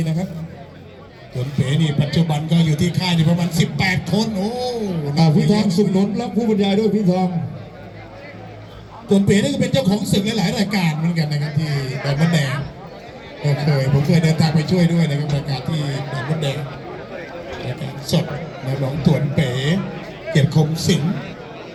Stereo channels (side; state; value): both; identical; correlation 1.00